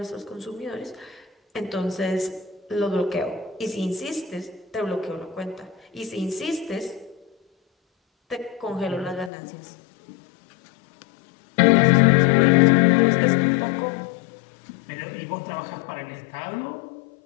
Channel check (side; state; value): right; drops out; at 9.3 s